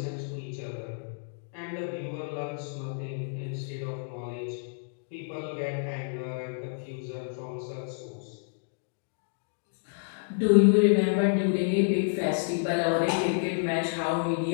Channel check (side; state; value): right; silent; digital silence